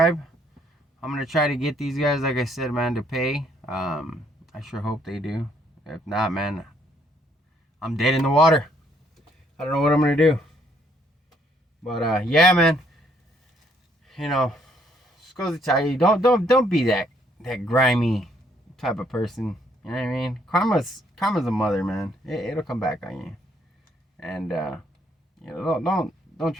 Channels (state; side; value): normal; both; correlation 0.68